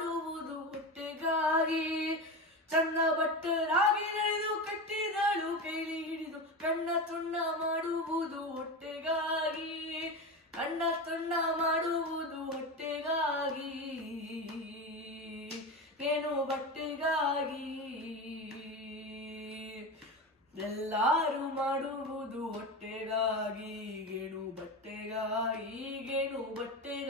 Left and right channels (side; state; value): both; normal; correlation 0.22